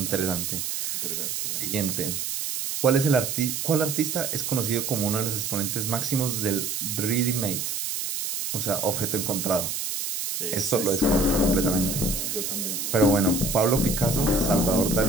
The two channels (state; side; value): noise; right; hiss, 3 dB below the sound